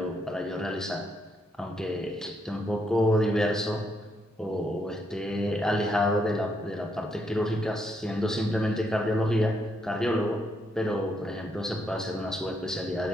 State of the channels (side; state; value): both; normal; correlation 0.77